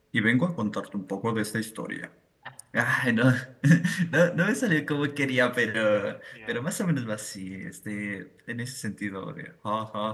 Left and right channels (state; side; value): identical; both; correlation 1.00